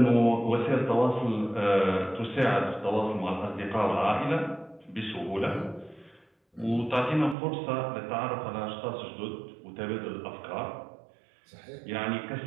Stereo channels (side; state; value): left; drops out; at 7.4 s